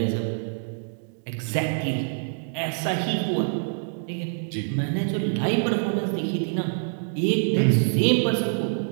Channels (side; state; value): left; silent; digital silence